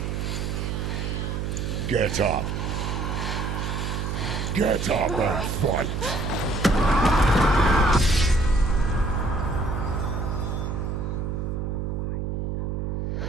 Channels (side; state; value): right; noise; hum, 2 dB below the sound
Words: Get up. Get up and fight.